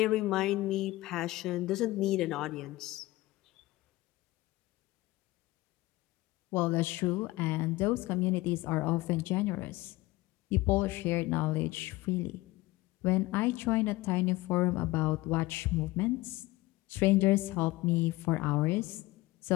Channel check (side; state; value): right; quieter; 19.4 dB